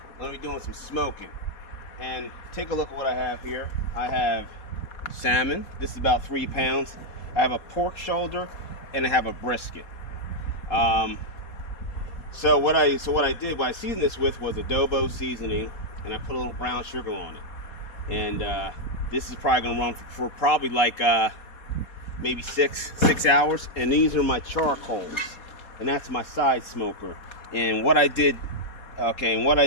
going to be doing some smoking. And take a look at what I have here. I have salmon. This is about 3 pounds. I have a pork shoulder, and I have a brisket. So what I seasoned this with was adobo seasoning, and I put a little brown sugar on it. And this is probably going to run for probably like maybe six hours. And these are my charcoals, and that's my side smoker. And what I did,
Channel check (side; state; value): right; late; 4.2 ms